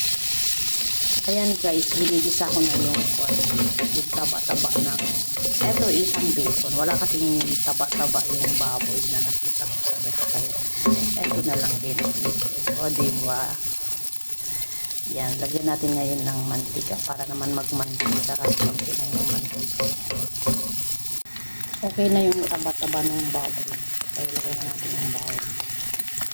Ayan guys, binigisa ko na yung taba-taba ng eto isang bacon. Wala kasing taba-taba yung baboy na nakita ko sa restaurant. Eto na lang din. O diba? Yan, lagyan natin ngayon ng mantika para naman magmantika kasi konti na yung mantika. Okay na yung taba-taba ng baboy. Kaya lagyan na natin yung bawang.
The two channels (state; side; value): inverted; both; correlation -1.00